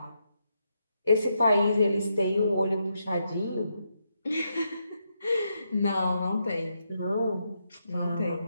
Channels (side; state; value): both; inverted; correlation -0.81